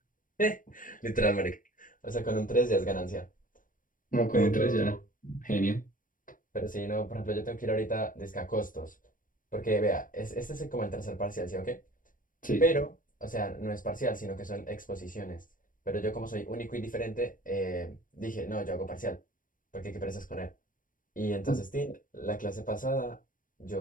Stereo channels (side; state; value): right; late; 0.39 ms